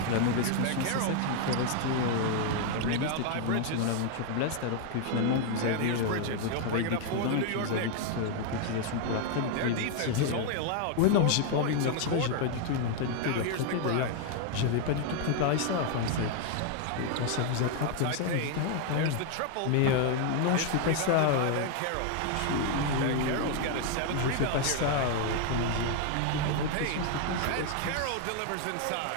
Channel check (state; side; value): different; both; correlation 0.00